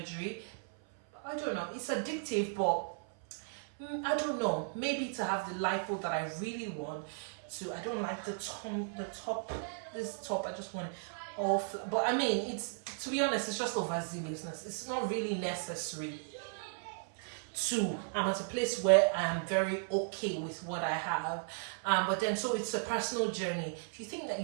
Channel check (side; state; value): left; silent; 54 dB below the other